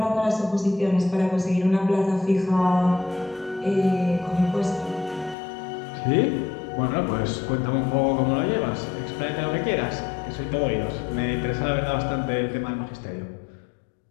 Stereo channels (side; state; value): right; drops out; at 5.4 s